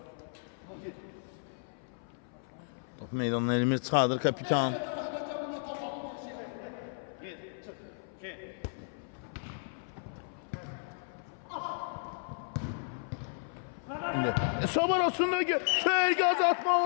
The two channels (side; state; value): right; silent; 55 dB below the other